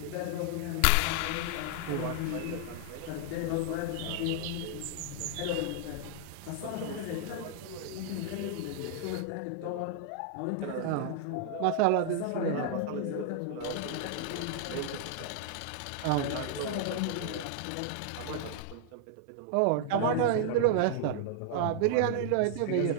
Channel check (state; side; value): different; both; correlation 0.00